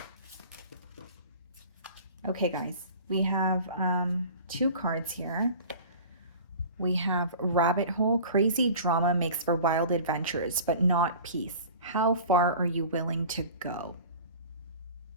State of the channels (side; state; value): both; inverted; correlation -0.41